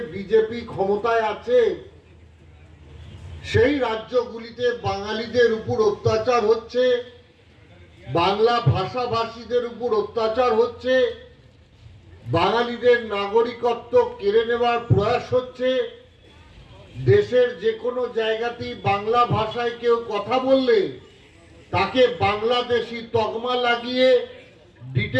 বিজেপি ক্ষমতায় আছে, সেই রাজ্যগুলিতে বাঙালিদের উপর অত্যাচার হচ্ছে, বাংলা ভাষাভাষীদের উপর অত্যাচার হচ্ছে, বাঙালিদের নাগরিকত্ব কেড়ে নেওয়ার প্রয়াস হচ্ছে। দেশের যে কোনো জায়গাতেই বাংলা ভাষায় কেউ কথা বললে তাকে বাংলাদেশি তকমা লাগিয়ে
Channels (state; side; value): identical; both; correlation 1.00